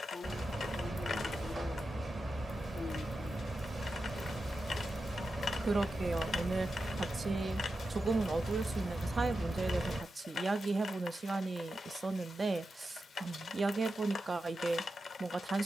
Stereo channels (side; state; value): both; normal; correlation 0.90